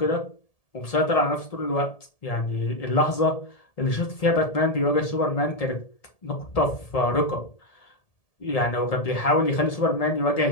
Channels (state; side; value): late; right; 1.7 ms